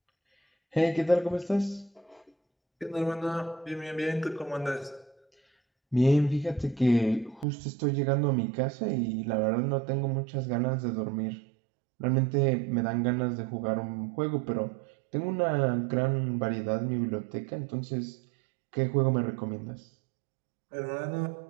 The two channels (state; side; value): drops out; left; at 7.5 s